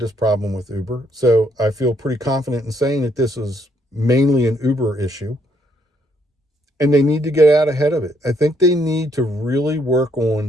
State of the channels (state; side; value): normal; both; correlation 0.71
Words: problem with Uber. So I feel pretty confident in saying that this is mainly an Uber issue. And they need to get out ahead of it. I think they need to really work